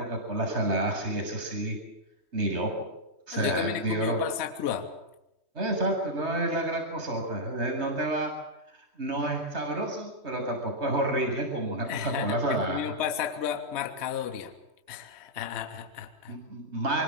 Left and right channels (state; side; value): late; left; 3.2 ms